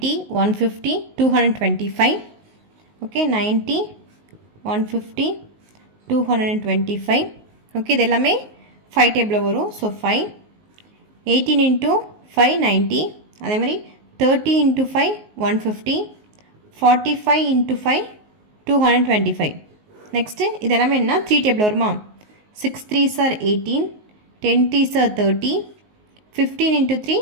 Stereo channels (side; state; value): left; late; 19 ms